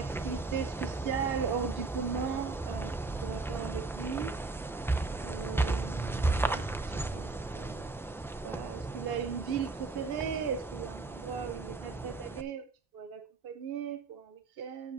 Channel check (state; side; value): quieter; left; 3.8 dB